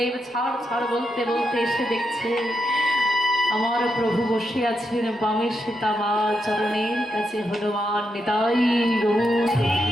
ছাড় ছাড় বলতে বলতে এসে দেখছে আমার প্রভু বসে আছেন বামে সীতামা, চরণের কাছে হনুমান। নিতাই গৌর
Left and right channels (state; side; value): normal; both; correlation 0.83